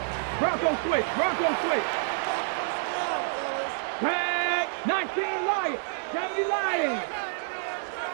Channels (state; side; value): silent; left; digital silence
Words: Bronco switch, Bronco switch. Tag, 19 Lions, 70 Lions.